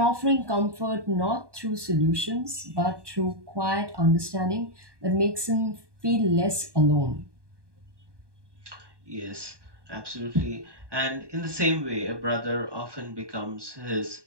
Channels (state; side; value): late; left; 1.2 ms